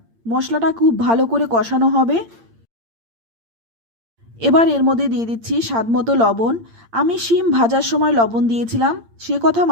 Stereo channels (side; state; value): left; late; 8.7 ms